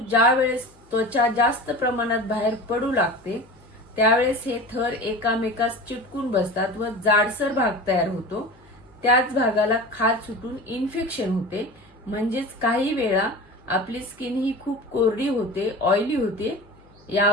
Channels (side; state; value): left; noise; hum, 29 dB below the sound